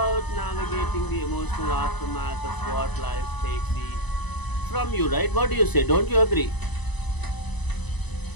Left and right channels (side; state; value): right; late; 0.99 ms